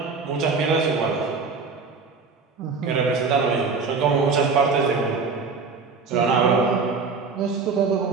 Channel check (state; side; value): quieter; left; 4.7 dB